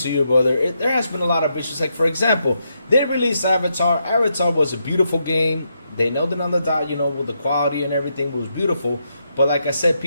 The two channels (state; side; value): inverted; both; correlation -0.81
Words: you, brother. There has been a lot of issues. Like, for example, they released Avatar. Avatar was a beautiful game. They nailed it on the dot, with the quality and everything. It was beautiful. But like I said,